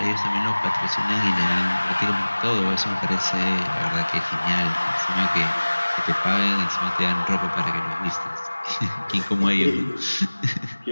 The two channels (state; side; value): inverted; both; correlation -1.00